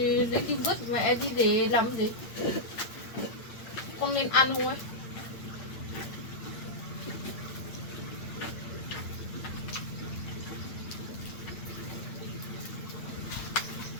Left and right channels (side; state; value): right; late; 8.7 ms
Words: lấy đi vứt mà em đi để làm gì, con nên ăn không ấy.